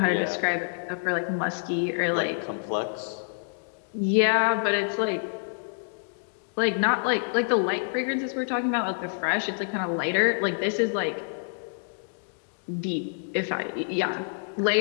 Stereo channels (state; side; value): silent; right; digital silence